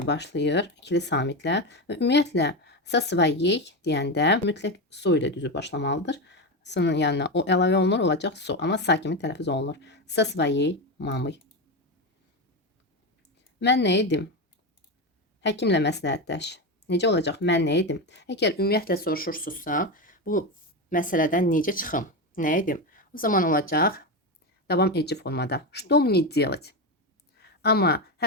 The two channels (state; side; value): normal; both; correlation 0.15